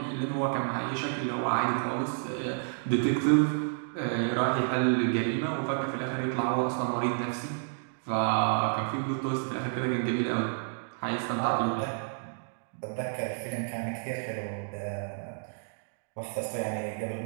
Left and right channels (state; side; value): silent; left; digital silence